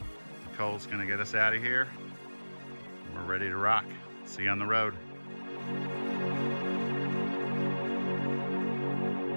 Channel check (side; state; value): both; inverted; correlation -1.00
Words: Nicole's gonna get us out of here. We're ready to rock. See you on the road.